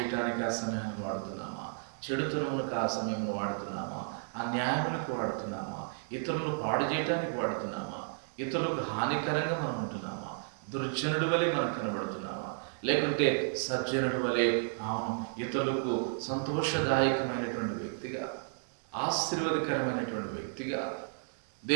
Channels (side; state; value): left; silent; digital silence